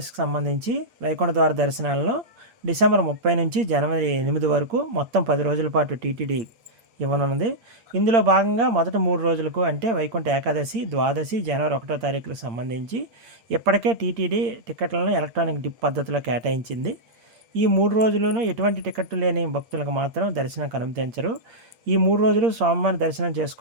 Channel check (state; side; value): late; left; 8.7 ms